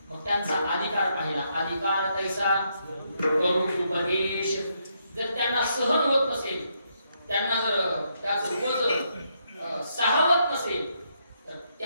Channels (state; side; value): inverted; both; correlation -0.77